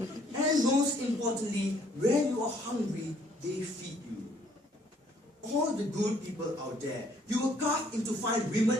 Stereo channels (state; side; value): normal; both; correlation 0.64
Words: And most importantly, when you are hungry, they feed you. All the good people out there, you were carved into fine